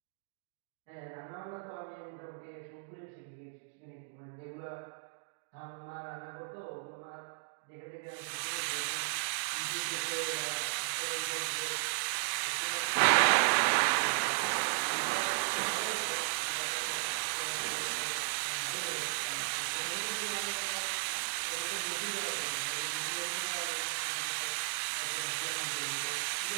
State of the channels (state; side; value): silent; left; digital silence